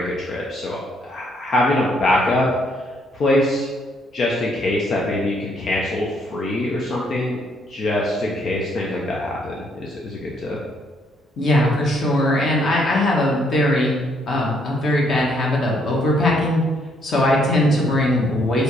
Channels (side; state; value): both; normal; correlation 0.70